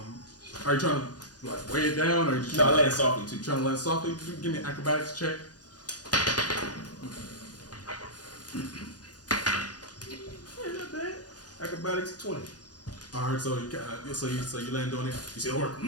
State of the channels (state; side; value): late; right; 0.69 ms